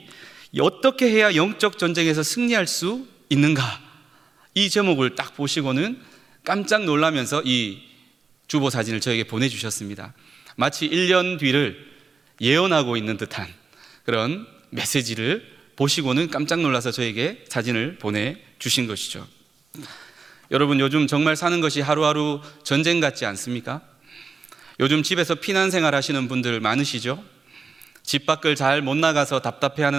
어떻게 해야 영적 전쟁에서 승리할 수 있는가? 이 제목을 딱 보시고는 깜짝 놀라면서 이 주보 사진을 저에게 보내주셨습니다. 마치 1년 뒤를 예언하고 있는 듯한 그런 메시지를 보시고는 깜짝 놀라서 저에게 사진을 보내주신 것이죠. 여러분, 요즘 정말 사는 것이 하루하루 전쟁 같지 않습니까? 요즘 집에서 피난 생활 하시는 분들 많으시죠? 집 밖을 잘 못 나가서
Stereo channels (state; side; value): quieter; left; 4.8 dB